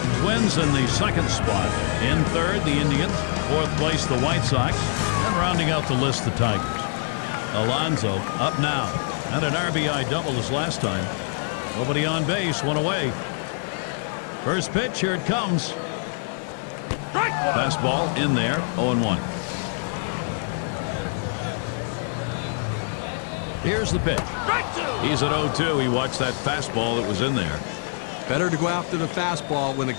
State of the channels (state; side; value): silent; right; 58 dB below the other